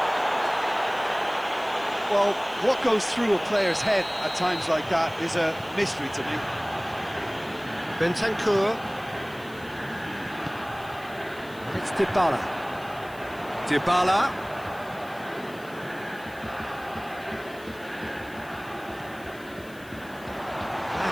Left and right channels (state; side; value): noise; left; hiss, 23 dB below the sound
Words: Well, what goes through a player's head at times like that is a mystery to me. Bentancur. It's Dybala. Dybala.